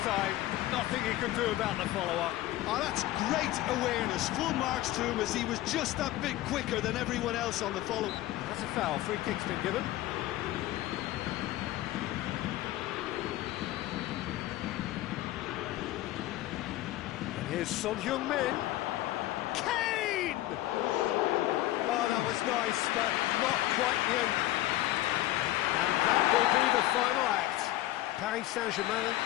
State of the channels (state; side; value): quieter; right; 15.7 dB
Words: time. Nothing he could do about the follow-up. Oh, that's great awareness. Full marks to him, as he was just that bit quicker than everyone else on the follow. That's a foul. Free kick's been given. And here's Son Heung-min. Kane! Oh, that was nice, but not quite the end. And that will be the final act. Paris Saint-Germain